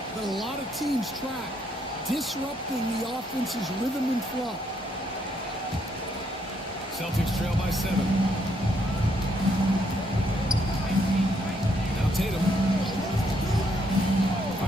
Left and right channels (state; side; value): normal; both; correlation 0.73